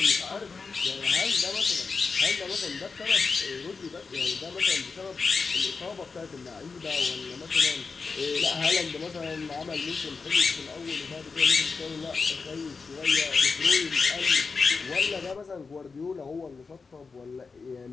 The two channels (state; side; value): quieter; right; 4.7 dB